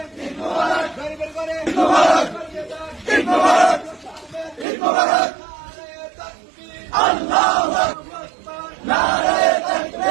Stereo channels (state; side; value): drops out; left; at 4.7 s